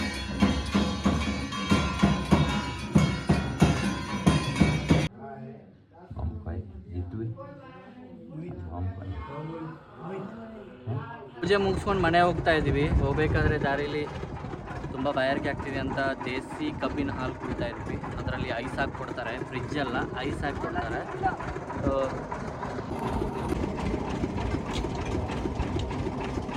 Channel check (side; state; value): both; identical; correlation 1.00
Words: ಪೂಜೆ ಮುಗಿಸ್ಕೊಂಡು ಮನೆ ಹೋಗ್ತಾ ಇದ್ದೀವಿ. ಹೋಗ್ಬೇಕಾದ್ರೆ ದಾರಿಲಿ ತುಂಬ ಬಾಯಾರಿಕೆ ಆಗ್ತಿದೆ ಅಂತ ದೇಸಿ ಕಬ್ಬಿನ ಹಾಲು ಕುಡಿತಾ ಇದ್ವಿ. ಅದರಲ್ಲಿ ಐಸ್ ಹಾಕಿ ಕೊಡ್ತಾರೆ, ಫ್ರಿಜ್ ಅಲ್ಲ, ಐಸ್ ಹಾಕಿ ಕೊಡ್ತಾರೆ. ಸೊ